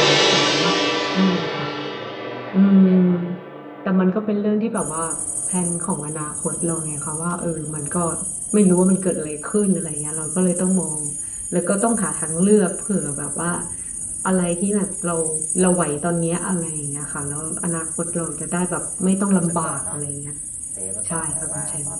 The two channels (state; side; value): identical; both; correlation 1.00